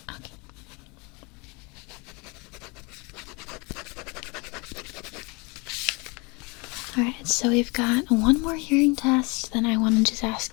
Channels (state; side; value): quieter; right; 28.3 dB